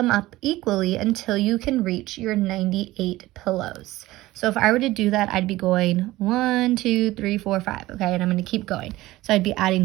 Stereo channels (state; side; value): quieter; left; 17.6 dB